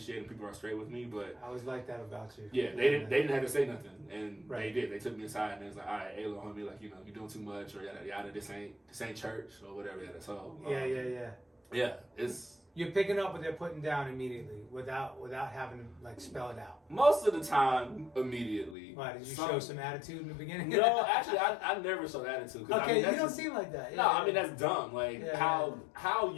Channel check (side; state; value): right; drops out; at 18.8 s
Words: people are straight with me. But I always like that about you. Yeah, they didn't have to say nothing, and they did. They took me aside and it was like, all right, hey, little homie, like you're doing too much, or yada yada. This ain't church or whatever. Yada. So yeah, it's you're picking up what they're putting down immediately without having to like spell it out. Most of the time, immediately. Why did you show some attitude in the beginning? No, actually, I never showed attitude. Okay, you don't seem like that. I mean that's dumb. Like